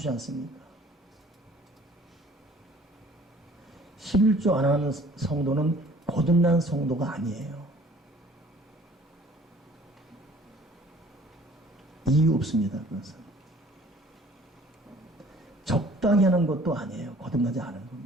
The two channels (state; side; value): normal; both; correlation 0.53